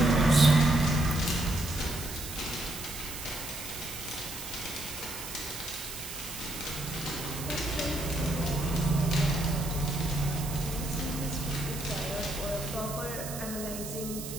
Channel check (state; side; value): noise; right; hiss, 9 dB below the sound